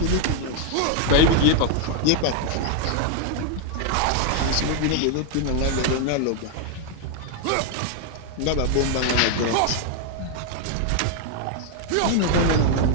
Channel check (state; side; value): different; both; correlation 0.00